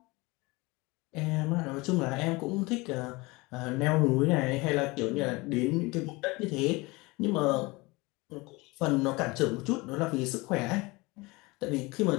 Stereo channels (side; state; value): right; quieter; 23.9 dB